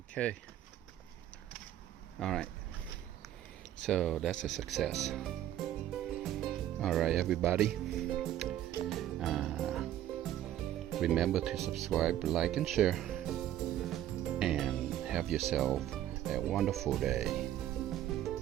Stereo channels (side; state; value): left; quieter; 12.2 dB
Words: Okay. Alright. So that's a success. Alright, everybody. Remember to subscribe, like, and share. And have yourself a wonderful day.